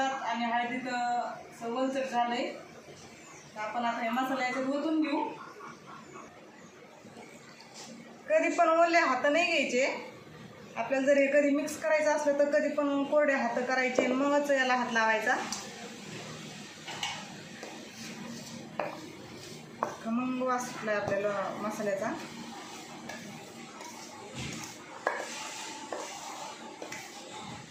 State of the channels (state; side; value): identical; both; correlation 1.00